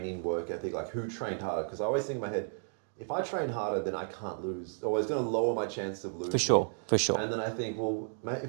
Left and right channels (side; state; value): left; silent; digital silence